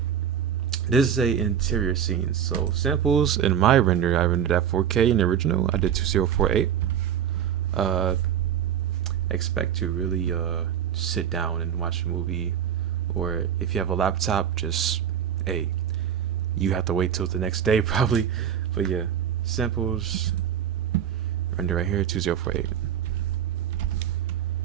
This is a interior scene. So samples in my render, I rendered at 4K in the original. I did 2048. Expect to really sit down and watch a movie, or if you have a laptop, just you have to wait till the next day probably. But yeah, samples, render right here, 2048.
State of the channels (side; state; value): left; quieter; 9.1 dB